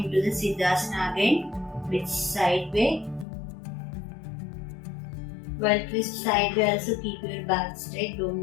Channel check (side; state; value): right; drops out; at 3.2 s